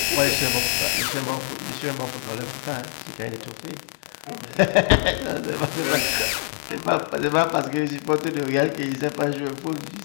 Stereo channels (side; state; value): right; silent; 62 dB below the other